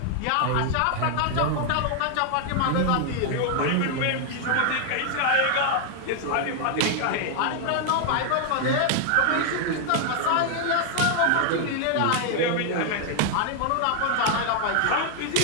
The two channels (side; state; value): both; different; correlation 0.00